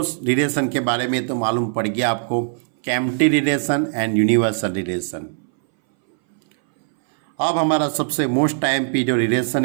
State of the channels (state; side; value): silent; left; 62 dB below the other